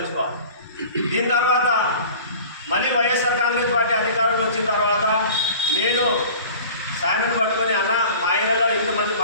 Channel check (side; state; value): both; inverted; correlation -0.42